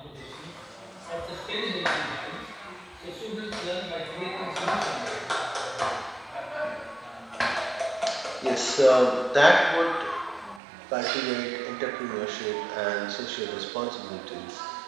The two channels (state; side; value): drops out; left; at 10.6 s